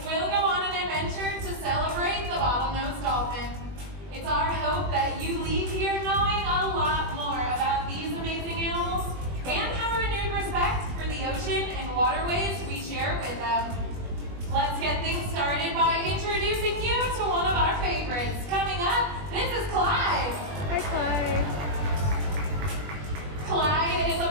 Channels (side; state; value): left; late; 20 ms